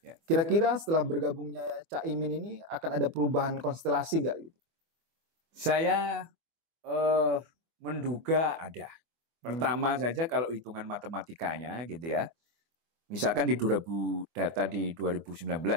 Ya. Kira-kira setelah bergabungnya Caimin ini akan ada perubahan konstelasi nggak? Saya menduga ada. Pertama saja kalau hitungan matematikanya gitu ya. Misalkan di data di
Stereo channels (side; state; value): left; late; 24 ms